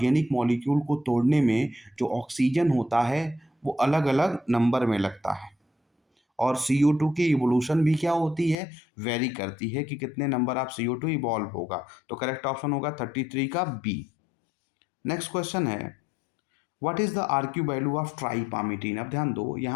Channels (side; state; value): right; drops out; at 8.6 s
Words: मॉलिक्यूल को तोड़ने में जो ऑक्सीजन होता है वो अलग अलग नंबर में लगता है, और CO2 की इवोल्यूशन भी क्या होती है, वेरी करती है कि कितने नंबर ऑफ CO2 इवॉल्व होगा। तो करेक्ट ऑप्शन होगा 33 का बी। नेक्स्ट क्वेश्चन है, what is the RQ value of tripalmitin? अब ध्यान दो,